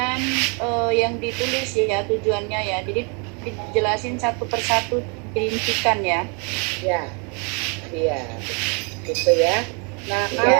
yang ditulis ya tujuannya ya. Jadi dijelasin satu persatu dirincikan ya. Ya, iya, gitu ya. Nah,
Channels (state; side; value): quieter; left; 35.4 dB